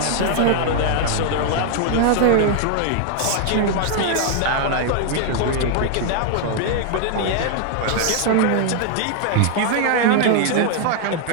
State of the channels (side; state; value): both; different; correlation 0.00